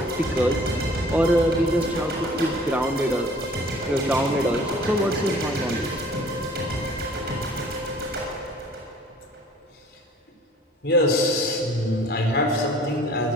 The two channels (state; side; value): normal; both; correlation 0.52